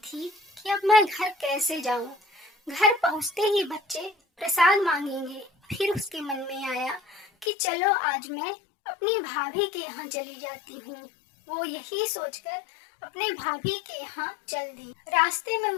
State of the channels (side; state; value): right; drops out; at 7.5 s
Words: कि अब मैं घर कैसे जाऊं। घर पहुंचते ही बच्चे प्रसाद मांगेंगे। फिर उसके मन में आया कि चलो आज मैं अपनी भाभी के यहाँ चली जाती हूँ। वो यही सोचकर अपने भाभी के यहाँ चल दी। रास्ते में